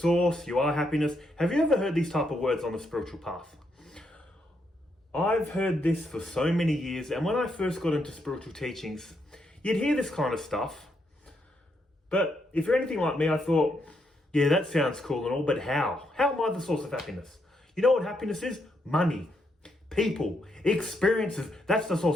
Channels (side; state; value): both; normal; correlation 0.78